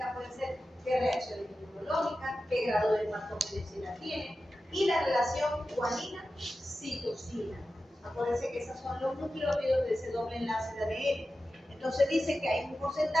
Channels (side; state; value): both; normal; correlation 0.93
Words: pueden ser qué reacciones inmunológicas, qué grado de patogenicidad tiene, y la relación guanina-citosina. Acuérdense que esos son los nucleótidos de ese doble enlace de ADN. Entonces dice que hay un